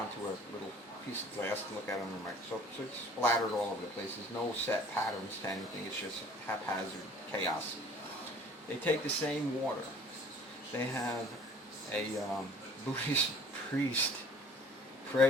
a little piece of glass to look at under a microscope. So it's splattered all over the place. There's no set patterns to anything. It's just haphazard chaos. They take the same water. They have a Buddhist priest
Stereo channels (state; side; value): normal; both; correlation 0.50